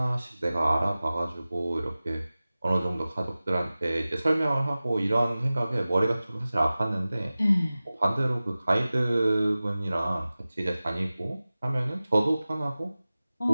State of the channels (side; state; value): both; inverted; correlation -0.97